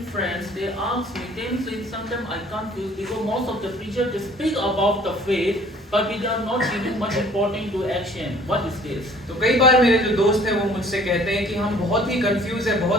friends, they ask me, sometimes I confuse because most of the preachers they speak about the faith, but we are not giving much importance to action. What is this? तो कई बार मेरे जो दोस्त हैं वो मुझसे कहते हैं कि हम बहुत ही कंफ्यूज है,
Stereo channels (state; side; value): normal; both; correlation 0.54